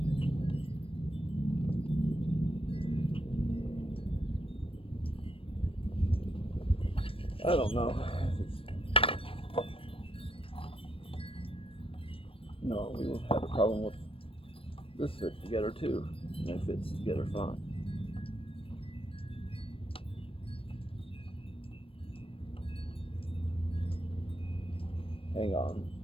I don't know. No, we will have a problem with this fit together too. And it fits together fine. Hang on.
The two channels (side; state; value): right; late; 0.26 ms